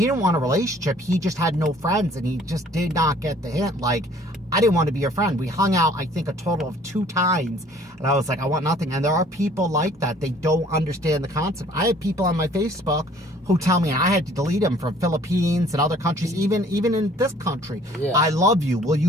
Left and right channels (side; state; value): both; normal; correlation 0.55